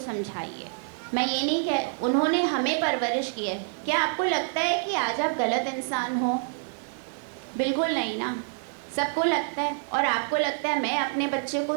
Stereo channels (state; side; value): silent; left; 60 dB below the other